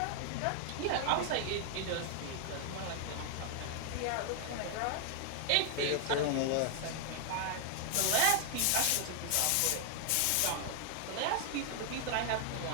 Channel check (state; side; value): different; both; correlation 0.00